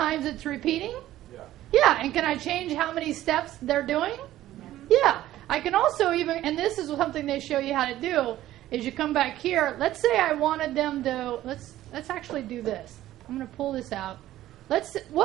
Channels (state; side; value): quieter; left; 14.2 dB